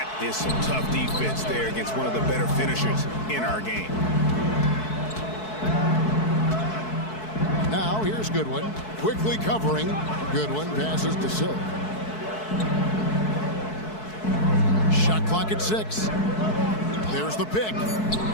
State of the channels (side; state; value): right; late; 4.6 ms